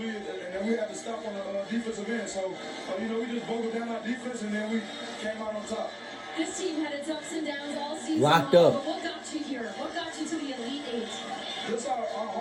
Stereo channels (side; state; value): both; identical; correlation 1.00